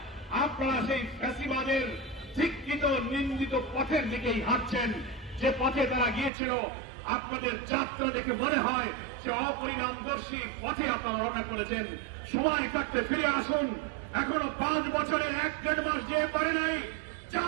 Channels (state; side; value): drops out; left; at 6.3 s